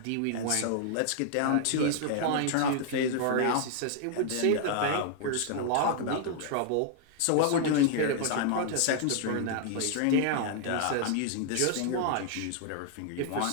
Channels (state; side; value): different; both; correlation -0.01